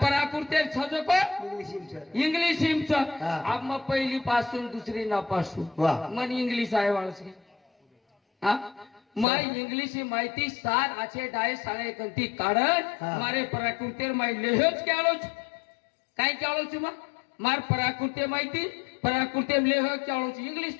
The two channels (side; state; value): right; drops out; at 9.2 s